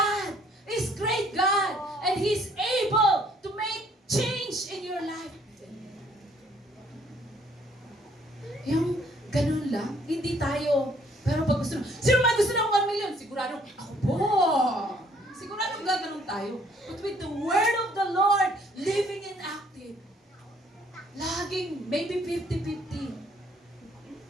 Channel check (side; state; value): both; normal; correlation 0.63